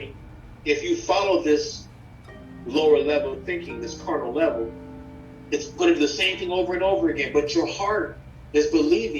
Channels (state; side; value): identical; both; correlation 1.00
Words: if you follow this lower level thinking, this carnal level, it's going to do the same thing over and over again, but your heart is